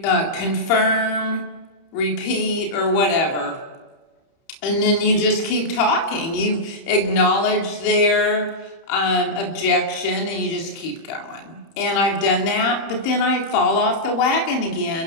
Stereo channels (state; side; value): late; right; 30 ms